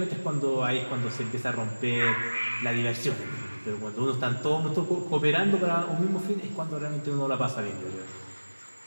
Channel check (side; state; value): both; inverted; correlation -1.00